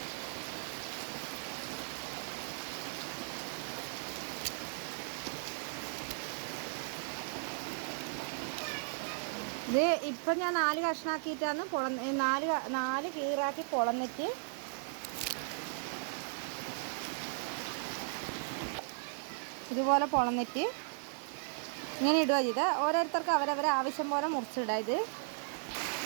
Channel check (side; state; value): left; silent; digital silence